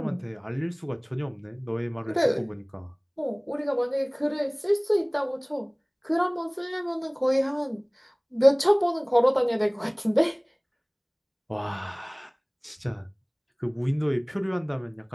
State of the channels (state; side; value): identical; both; correlation 1.00